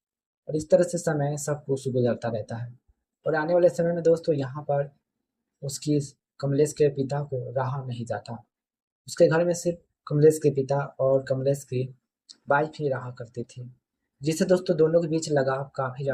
और इस तरह से समय सब कुछ गुजरता रहता है। और आने वाले समय में दोस्तों यहाँ पर उसकी कमलेश के पिता को रहा नहीं जाता। उसके घर में सिर्फ कमलेश के पिता और कमलेश की वाइफ ही रहा करती थी, जिससे दोस्तों दोनों के बीच लगाव काफ़ी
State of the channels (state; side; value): identical; both; correlation 1.00